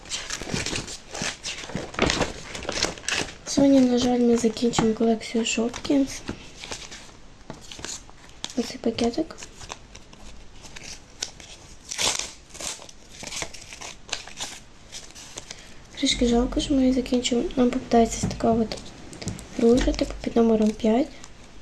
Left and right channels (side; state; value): both; identical; correlation 1.00